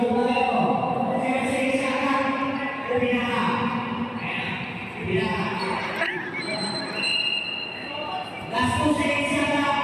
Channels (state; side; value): identical; both; correlation 1.00